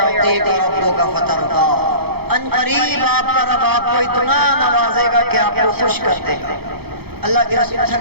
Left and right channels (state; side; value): late; left; 0.96 ms